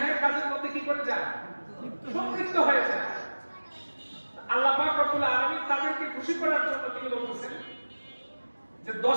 কাজের মধ্যে কি করে যায়, সম্পৃক্ত হয়ে যায়। আল্লাহ পাক রব্বুল আলামিন তাদেরকে খুশি করার জন্য তিনি বলতেছেন যে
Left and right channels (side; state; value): both; inverted; correlation -1.00